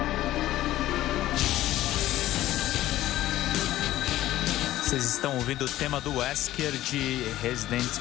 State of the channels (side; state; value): right; quieter; 14.6 dB